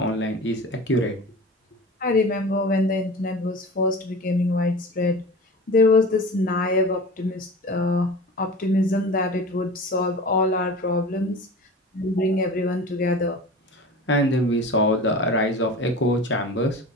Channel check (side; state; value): both; normal; correlation 0.35